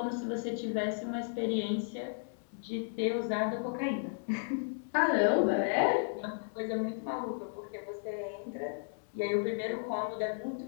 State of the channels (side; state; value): right; silent; digital silence